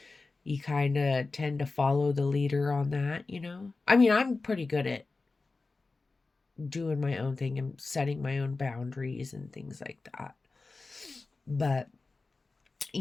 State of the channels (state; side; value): quieter; right; 3.7 dB